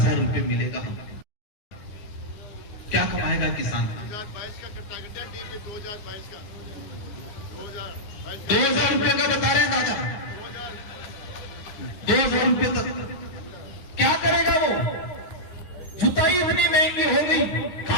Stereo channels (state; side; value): late; right; 9.6 ms